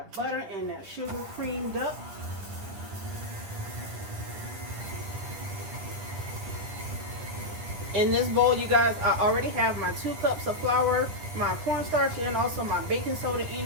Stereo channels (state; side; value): late; left; 10 ms